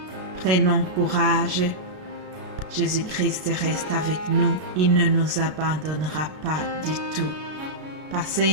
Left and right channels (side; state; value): left; late; 33 ms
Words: Prenons courage. Jésus-Christ reste avec nous. Il ne nous abandonnera pas du tout. Passez